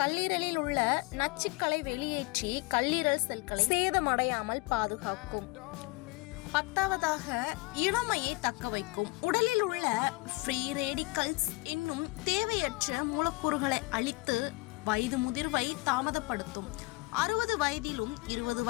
கல்லீரலில் உள்ள நச்சுக்களை வெளியேற்றி கல்லீரல் செல்களை சேதமடையாமல் பாதுகாக்கும். 10வதாக இளமையை தக்க வைக்கும். உடலில் உள்ள ஃப்ரீ ரேடிக்கல்ஸ் என்னும் தேவையற்ற மூலக்கூறுகளை அழித்து வயது முதிர்வை தாமதப்படுத்தும். 60 வயதிலும் 20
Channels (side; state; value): right; quieter; 24.1 dB